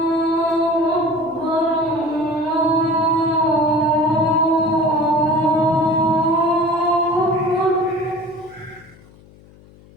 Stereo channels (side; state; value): left; noise; hum, 25 dB below the sound